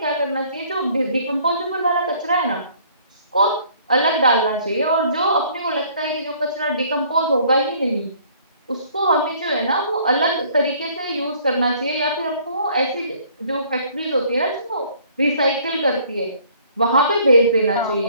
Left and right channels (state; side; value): inverted; both; correlation -0.58